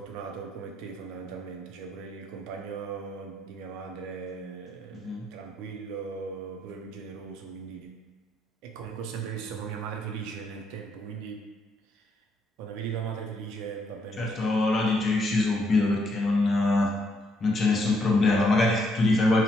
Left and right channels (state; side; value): normal; both; correlation 0.73